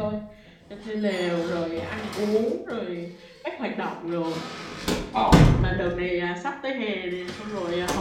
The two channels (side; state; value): both; identical; correlation 1.00